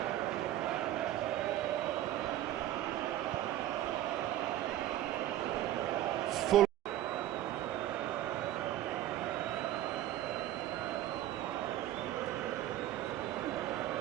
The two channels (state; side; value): quieter; left; 13.4 dB